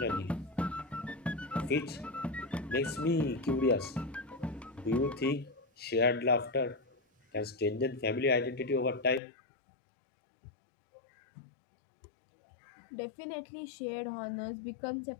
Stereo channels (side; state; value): right; drops out; at 9.2 s